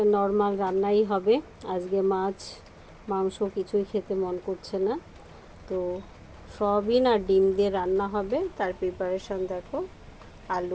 নর্মাল রান্নাই হবে। আজকে মাছ মাংস কিছুই খেতে মন করছে না, তো সয়াবিন আর ডিম দিয়ে রান্না হবে। তার প্রিপারেশান দেখো,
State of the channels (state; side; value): identical; both; correlation 1.00